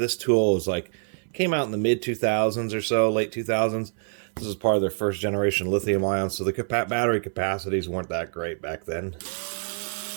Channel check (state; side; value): silent; left; 60 dB below the other